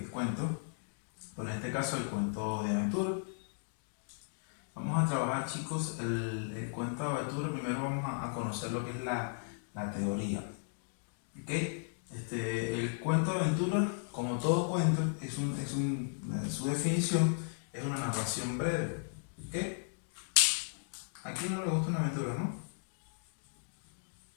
el cuento, pero en este caso el cuento de aventura. Vamos a trabajar, chicos, el cuento de aventura. Primero vamos a conocer lo que es la teoría. El cuento de aventura, como todo cuento, su definición es una narración breve. ¿A quién no le gusta una aventura, no?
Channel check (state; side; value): silent; right; digital silence